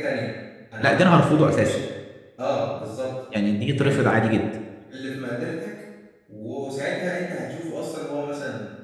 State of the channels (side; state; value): both; identical; correlation 1.00